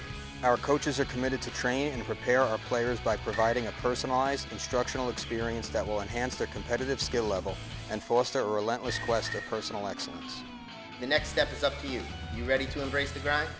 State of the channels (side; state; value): both; identical; correlation 1.00